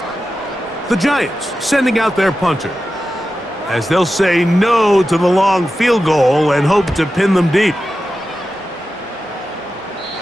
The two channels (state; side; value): normal; both; correlation 0.92